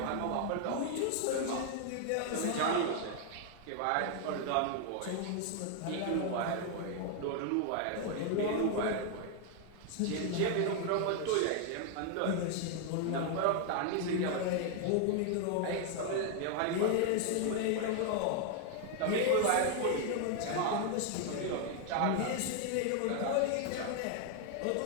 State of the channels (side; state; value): both; different; correlation 0.00